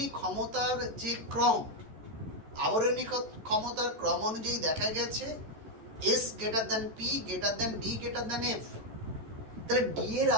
ক্ষমতার যে ক্রম, আবরণী ক্ষমতার ক্রম অনুযায়ী দেখা গেছে S greater than P greater than D greater than F। তাহলে D এর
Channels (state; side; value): late; left; 13 ms